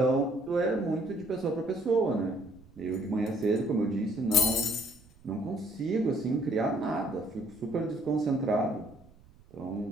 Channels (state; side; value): noise; right; rumble, 25 dB below the sound